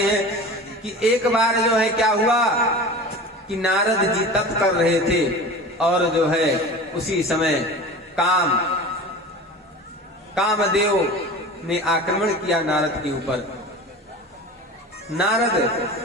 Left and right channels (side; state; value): both; normal; correlation 0.35